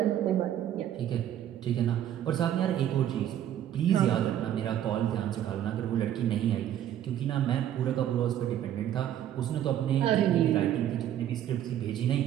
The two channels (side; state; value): left; quieter; 11.1 dB